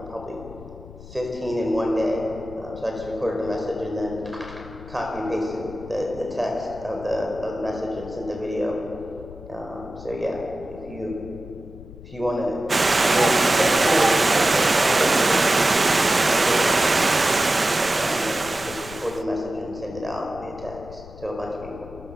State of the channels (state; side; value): noise; left; rumble, 17 dB below the sound